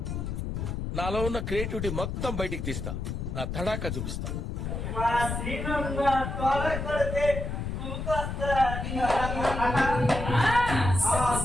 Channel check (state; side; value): noise; left; rumble, 4 dB below the sound